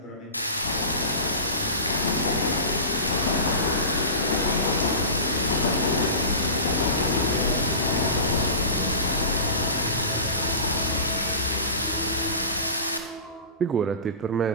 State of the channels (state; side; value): inverted; both; correlation -0.34